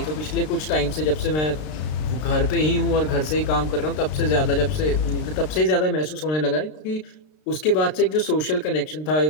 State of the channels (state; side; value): late; right; 33 ms